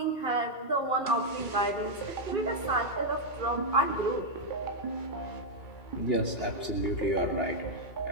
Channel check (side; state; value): right; late; 2.8 ms